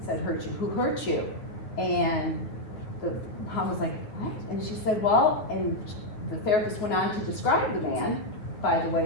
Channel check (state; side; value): late; right; 9.3 ms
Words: said hurt you, who hurt you. And the mom was like, what? And she said, well, and the therapist went on to describe the man by the way